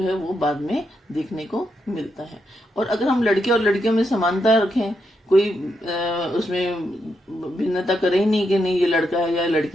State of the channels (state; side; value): normal; both; correlation 0.82